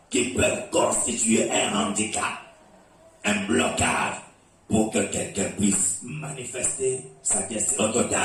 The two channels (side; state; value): both; identical; correlation 1.00